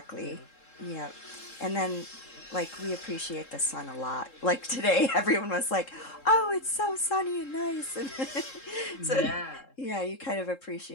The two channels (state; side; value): late; right; 3.7 ms